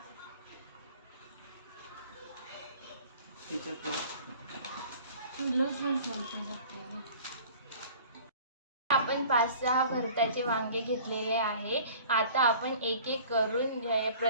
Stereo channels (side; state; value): both; inverted; correlation -0.47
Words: आपण 5-6 भरताचे वांगे घेतलेले आहे। आता आपण एक एक करून